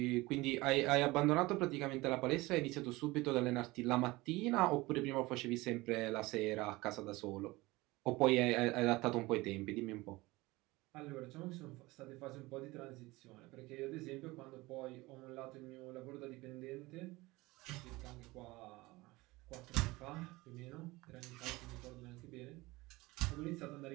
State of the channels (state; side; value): quieter; left; 21.1 dB